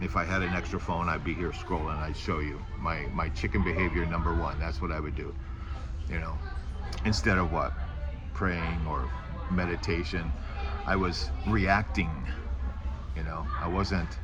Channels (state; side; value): identical; both; correlation 1.00